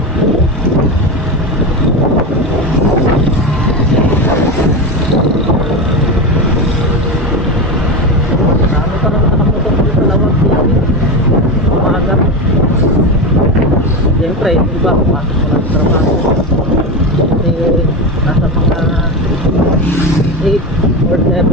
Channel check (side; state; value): both; normal; correlation 0.19